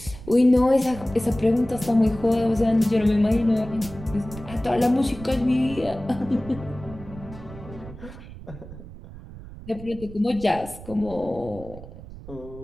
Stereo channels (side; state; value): right; noise; rumble, 15 dB below the sound